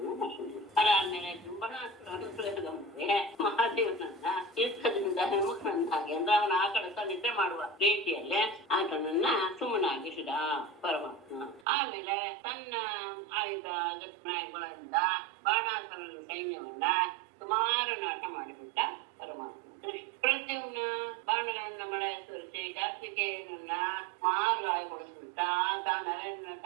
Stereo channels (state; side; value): drops out; left; at 11.7 s